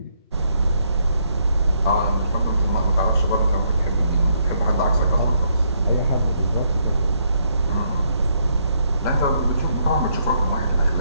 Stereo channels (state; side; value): inverted; both; correlation -0.74